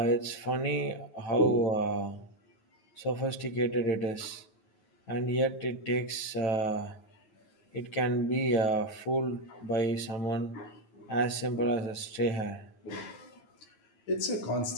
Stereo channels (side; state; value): right; late; 9.2 ms